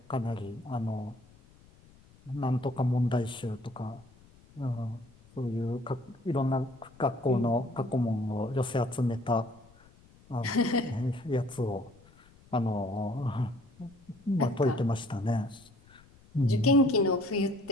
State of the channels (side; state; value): left; noise; rumble, 26 dB below the sound